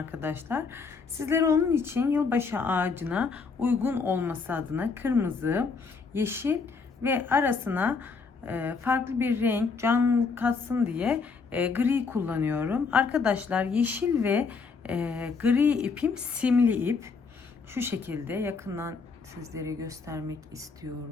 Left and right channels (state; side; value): quieter; right; 4.9 dB